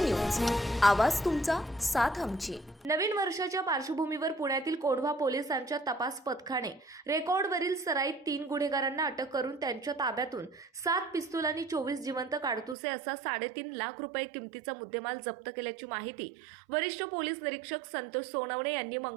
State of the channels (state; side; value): drops out; left; at 12.8 s